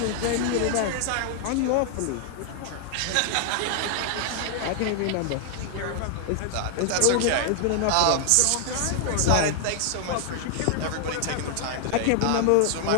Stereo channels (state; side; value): different; both; correlation 0.00